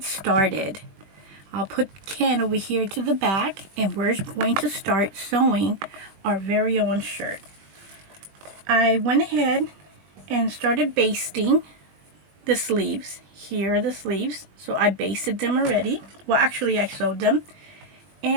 started. I'll put Ken over here to the back, and we're going to start sewing our very own shirt. I went ahead and started basting the sleeves. Here are the sleeves. So I basted them already. Well, actually I sewed them.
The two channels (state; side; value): late; left; 21 ms